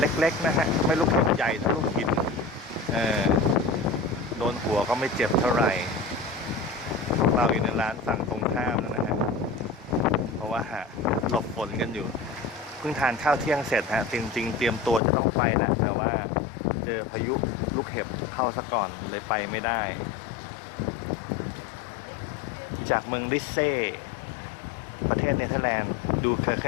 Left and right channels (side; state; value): right; drops out; at 15.0 s